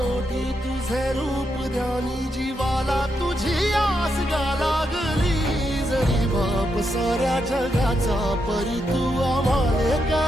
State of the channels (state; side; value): normal; both; correlation 0.82